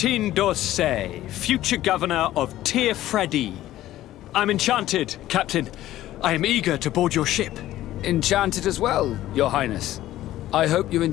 d'Orsay, future governor of Freddy. I'm enchanted, Captain. I am eager to board your ship. Enchanted as well, Your Highness. I hope you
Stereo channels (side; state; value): right; quieter; 14.3 dB